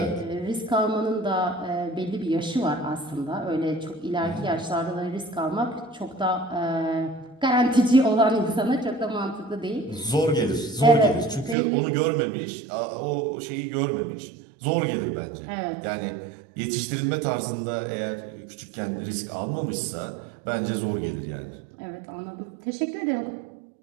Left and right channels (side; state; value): left; drops out; at 11.6 s